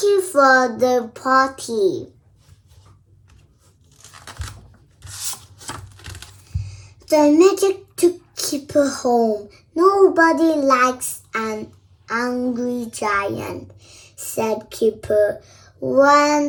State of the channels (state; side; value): identical; both; correlation 1.00